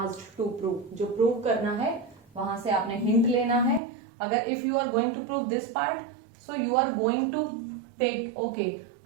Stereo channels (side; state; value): left; drops out; at 3.8 s